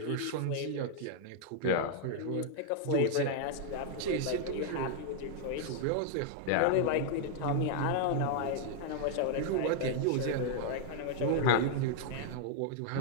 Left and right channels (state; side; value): different; both; correlation -0.01